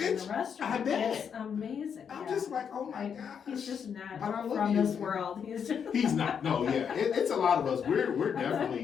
the restaurant. I bet. It's amazing. I'm just like, oh my gosh. He's just not from this world. He's not. No, yeah, it's a lot of us. We're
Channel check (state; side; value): quieter; right; 7.3 dB